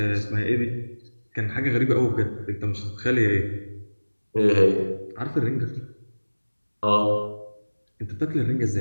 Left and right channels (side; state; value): both; inverted; correlation -1.00